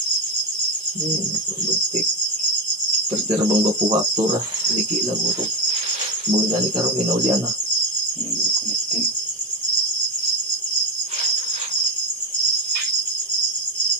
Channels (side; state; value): both; normal; correlation 0.12